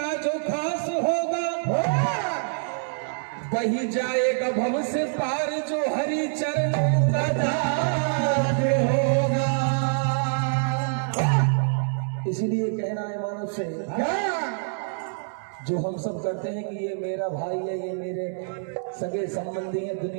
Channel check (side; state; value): left; silent; digital silence